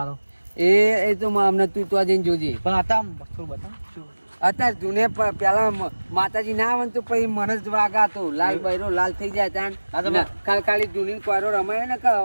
એ તો અમને તું તો જઈને જોજે. પણ હતા થોડું બતા અત્યારે જૂને પેલા માતાજી ના આવે ને તો પછી મને જ વાગા તો લાલ બૈરો લાલ થઈ જાય ત્યાં ખાલી જૂની કોયરો રમાય ને કે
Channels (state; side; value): inverted; both; correlation -1.00